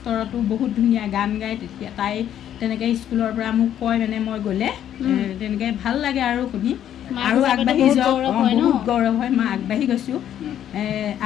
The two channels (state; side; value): quieter; right; 10.5 dB